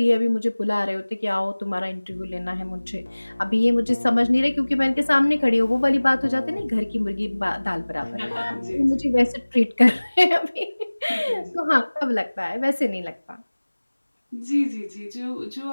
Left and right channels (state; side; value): inverted; both; correlation -1.00